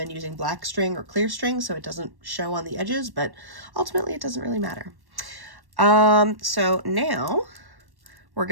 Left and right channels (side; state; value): left; late; 1.1 ms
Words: using black string or clear string so it doesn't show on the edges, but ultimately it doesn't really matter. So now we're